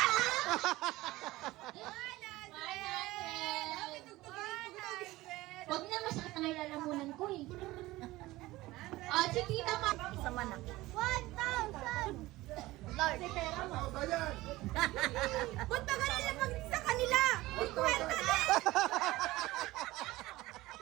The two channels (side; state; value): left; quieter; 18.5 dB